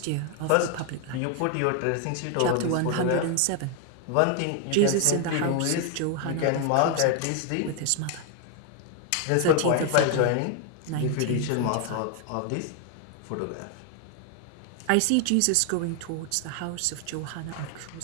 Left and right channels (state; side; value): different; both; correlation 0.00